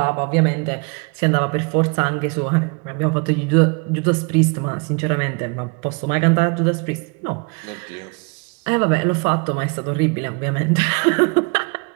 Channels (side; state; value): left; quieter; 32.8 dB